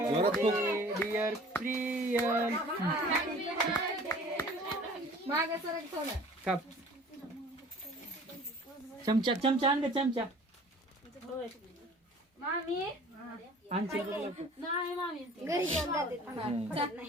dear Priyal मागे सरक थोडं काप चमचा चमचा आण ग चमचा मामी आणची नाही मामी घरी घेऊन जाते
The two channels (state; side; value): normal; both; correlation 0.47